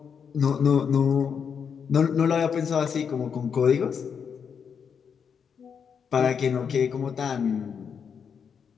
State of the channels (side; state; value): right; quieter; 6.9 dB